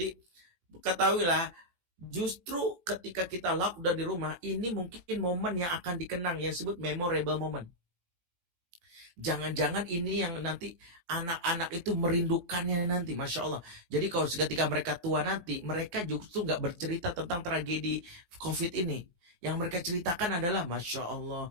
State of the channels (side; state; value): left; late; 18 ms